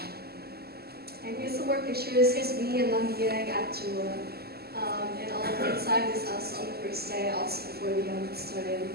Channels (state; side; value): late; left; 0.46 ms